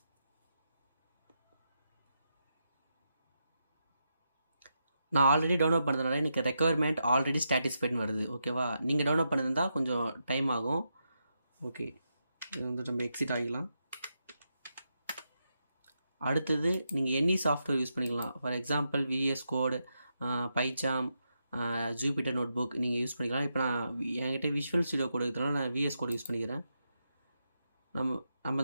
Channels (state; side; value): inverted; both; correlation -0.84